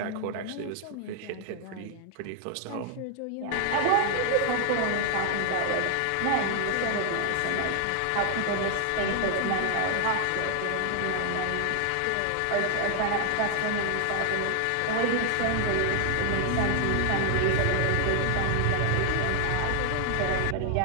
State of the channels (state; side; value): different; both; correlation 0.00